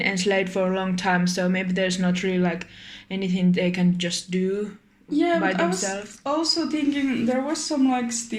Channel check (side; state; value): both; identical; correlation 1.00